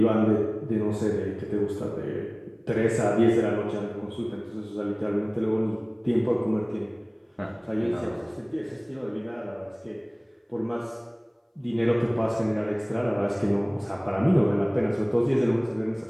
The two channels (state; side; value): identical; both; correlation 1.00